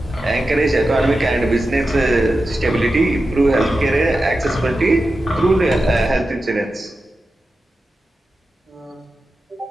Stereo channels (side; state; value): both; normal; correlation 0.92